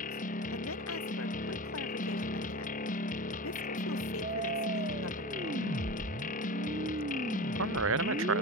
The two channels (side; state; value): both; normal; correlation 0.28